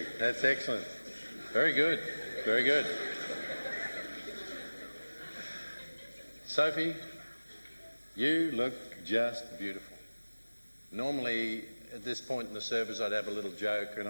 That's excellent. Very good, very good. Sophie, you look just beautiful. Normally, at this point in the service, I'd have a little joke and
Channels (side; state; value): both; inverted; correlation -1.00